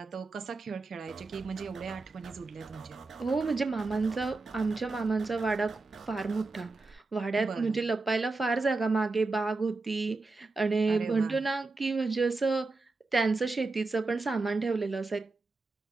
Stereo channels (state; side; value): quieter; left; 3.6 dB